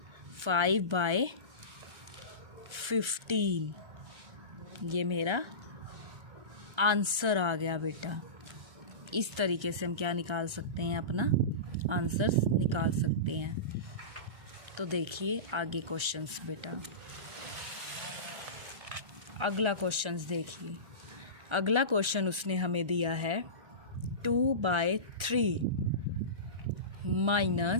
5/15 ये मेरा आंसर आ गया बेटा। इस तरीके से हम क्या निकाल सकते हैं, अपना आंसर्स निकाल सकते हैं। तो देखिए आगे क्वेश्चंस बेटा। अगला क्वेश्चंस देखिए। अगला क्वेश्चन उसने हमें दिया है 2/3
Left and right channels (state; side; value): late; left; 1.3 ms